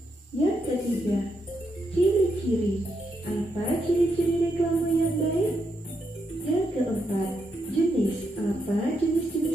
Yang ketiga, ciri-ciri. Apa ciri-ciri reklame yang baik? Yang keempat, jenis. Apa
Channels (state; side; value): normal; both; correlation 0.81